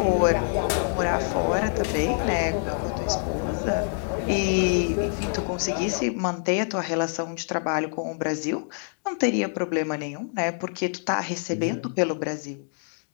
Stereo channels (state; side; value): silent; right; digital silence